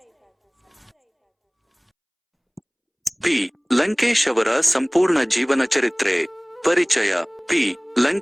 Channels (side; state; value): both; identical; correlation 1.00